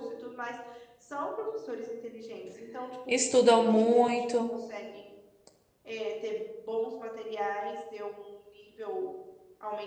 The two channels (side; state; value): both; identical; correlation 1.00